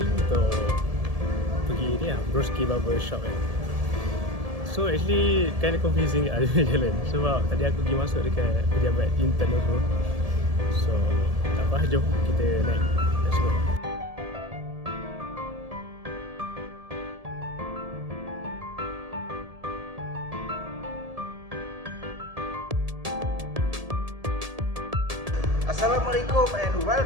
untuk pergi ni lah, Broski Barber Shop kan. So actually kind of confusing ada jalan, sebab tadi aku pergi masuk dekat pejabat intern tu. So tak apa, jom kita naik. Let's go. Assalamualaikum and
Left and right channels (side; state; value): left; late; 1.7 ms